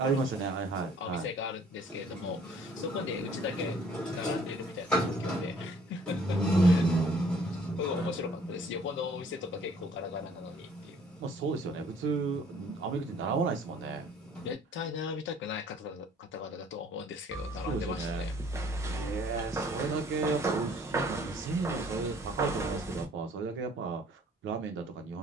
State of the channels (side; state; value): both; normal; correlation 0.57